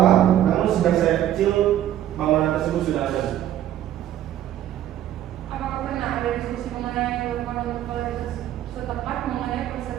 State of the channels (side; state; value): left; quieter; 12.0 dB